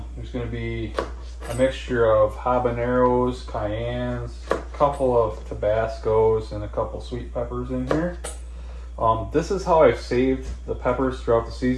There's going to be a mixture of habaneros, cayennes, a couple of Tabascos, and a couple sweet peppers in here. This is how I've saved the peppers throughout the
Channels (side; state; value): both; identical; correlation 1.00